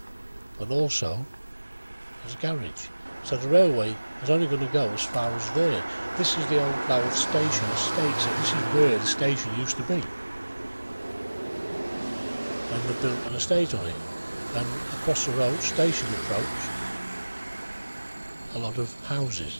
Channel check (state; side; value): inverted; both; correlation -1.00